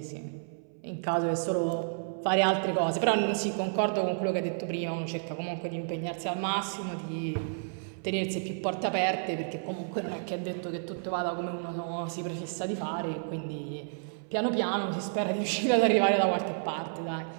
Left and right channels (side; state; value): left; silent; 57 dB below the other